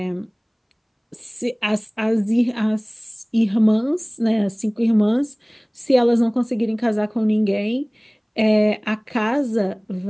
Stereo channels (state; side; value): identical; both; correlation 1.00